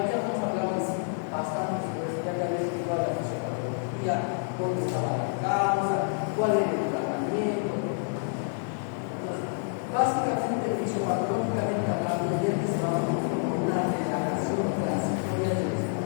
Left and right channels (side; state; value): right; silent; 57 dB below the other